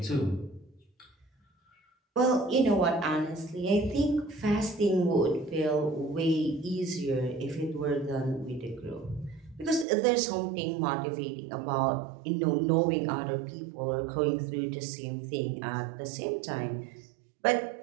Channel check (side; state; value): left; drops out; at 9.9 s